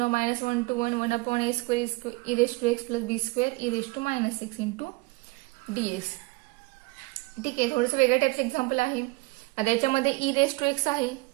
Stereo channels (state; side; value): quieter; left; 24.4 dB